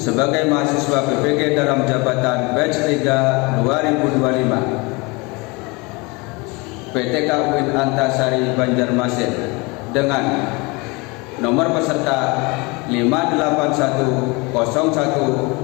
mahasiswa PPG dalam jabatan batch 3 2025. PTK UIN Antasari Banjarmasin dengan nomor peserta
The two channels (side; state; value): right; quieter; 26.9 dB